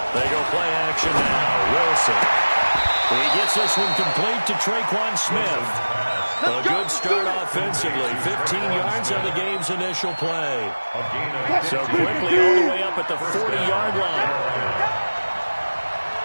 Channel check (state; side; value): inverted; both; correlation -1.00